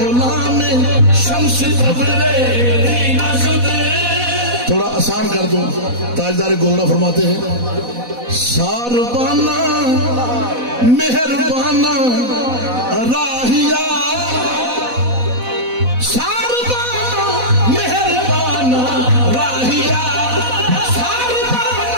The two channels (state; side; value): late; left; 4.1 ms